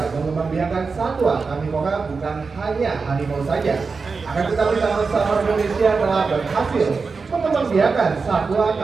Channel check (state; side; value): quieter; left; 4.7 dB